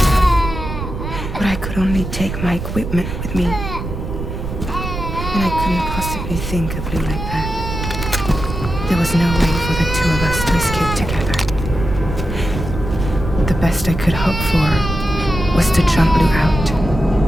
But I could only take my equipment with me. And I couldn't possibly think of Lou like that. There was no way for the two of us to escape together. The best I could hope for was to jump Lou out.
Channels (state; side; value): noise; right; rumble, 6 dB below the sound